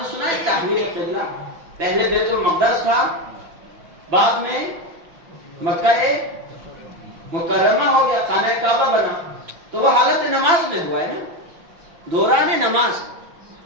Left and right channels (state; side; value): late; left; 5.9 ms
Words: سنا ہے تحویل قبلہ؟ پہلے بیت المقدس تھا، بعد میں مکہ مکرمہ ہو گیا، خانہ کعبہ بنا، تو وہ حالت نماز میں ہوا ہے نا، دوران نماز،